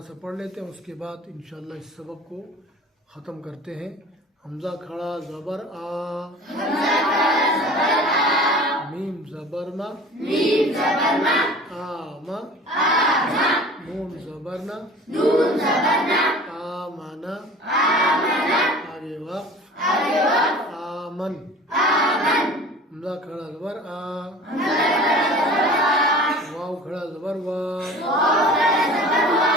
सा पढ़ लेते हैं, उसके बाद इंशाअल्लाह इस सबक को ख़त्म करते हैं। हमज़ा खड़ा ज़बर आ, मीम ज़बर मा, आ मा, नून ज़बर ना, आ माना, आगे वक़्फ़, आमन। हमज़ा खड़ा ज़बर आ, वाव खड़ा ज़बर वा,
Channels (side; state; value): both; normal; correlation 0.42